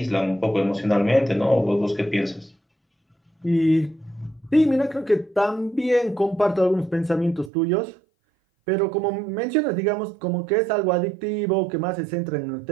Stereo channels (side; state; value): left; drops out; at 7.5 s